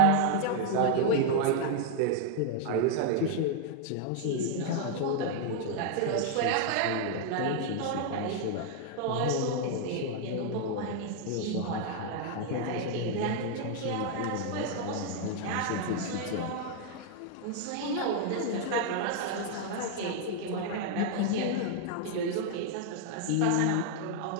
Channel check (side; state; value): both; different; correlation 0.00